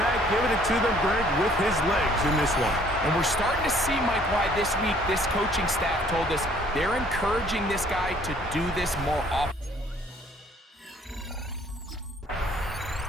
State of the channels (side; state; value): both; normal; correlation 0.59